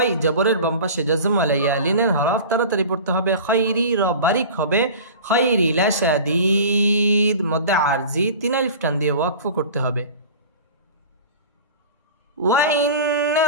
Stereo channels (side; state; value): both; inverted; correlation -0.37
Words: জবরের বাম পাশে জজম ওয়ালা ইয়া লিনের হরফ তাড়াতাড়ি পড়তে হবে। খাইরি র বারিক হবে। খাইরি লাশাদীদ মধ্যে আরজি ৩ আলিফ টান দিয়ে ওয়াকফ করতে হবে।